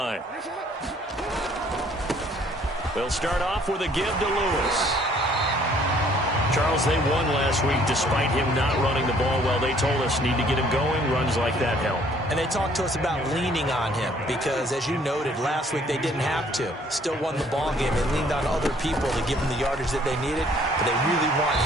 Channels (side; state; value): both; normal; correlation 0.60